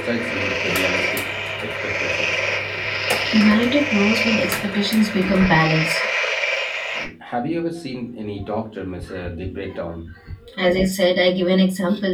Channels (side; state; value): both; identical; correlation 1.00